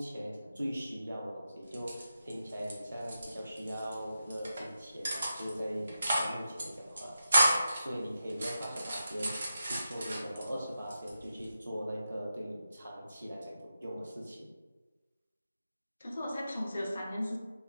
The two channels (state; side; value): inverted; both; correlation -0.89